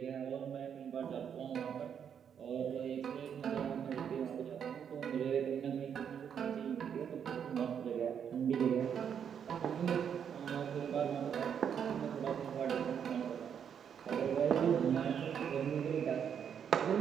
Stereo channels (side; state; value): left; quieter; 8.0 dB